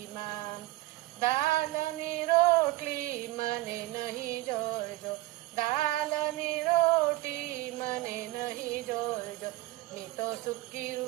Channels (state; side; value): quieter; left; 19.0 dB